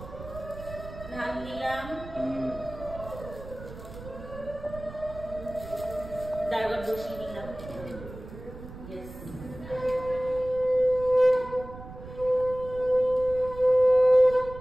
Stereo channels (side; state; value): right; noise; rumble, 14 dB below the sound